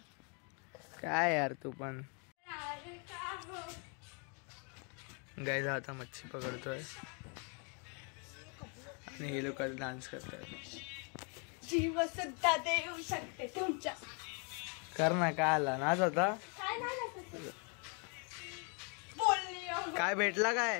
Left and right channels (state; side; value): quieter; right; 36.9 dB